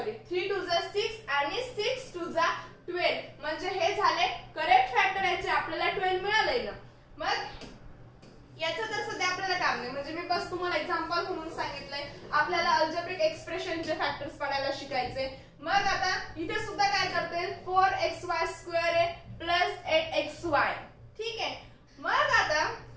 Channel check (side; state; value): both; identical; correlation 1.00